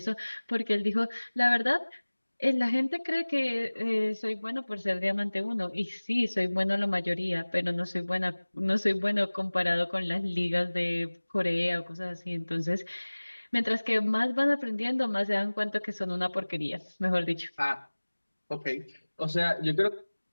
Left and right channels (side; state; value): both; inverted; correlation -1.00